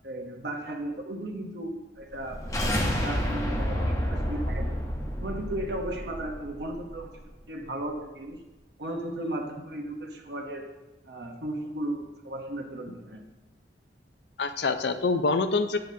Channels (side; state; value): both; normal; correlation 0.46